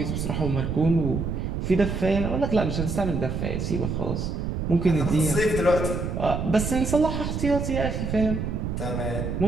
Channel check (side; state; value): right; noise; rumble, 3 dB below the sound